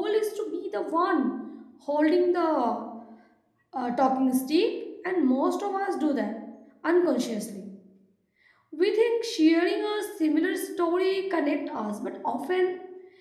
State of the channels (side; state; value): both; identical; correlation 1.00